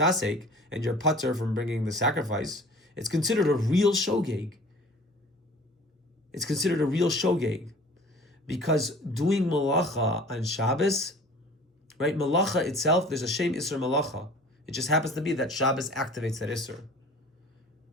and you're putter from bringing the sacrifice. It's considered a real shogeg. It's considered a real shogeg, because doing malacha on Shabbos, right? Malacha itself, there's a Shem Issur malacha. It just happens to be that Shabbos activates that Issur,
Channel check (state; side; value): normal; both; correlation 0.46